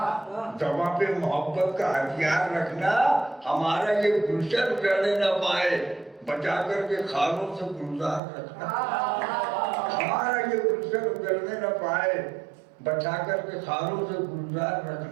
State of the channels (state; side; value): drops out; left; at 8.2 s